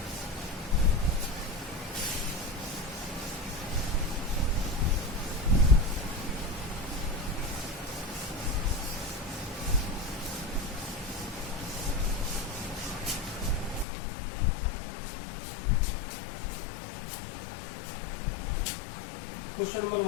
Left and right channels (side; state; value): right; drops out; at 13.9 s